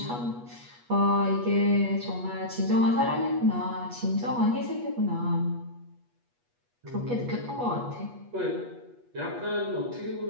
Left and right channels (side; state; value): left; late; 8.3 ms